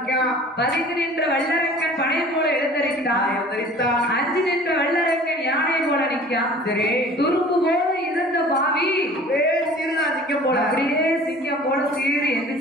பதிந்து நின்ற வல்லரக்கன் பனை போல எழுந்தரித்தான். அஞ்சு நின்ற வல்லரக்கன் யானை போல நிக்கான். துரும்பு போல இருந்த பாவி சிங்கம் போல அப்படியே சிங்கம் போல சீறி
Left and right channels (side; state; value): both; normal; correlation 0.46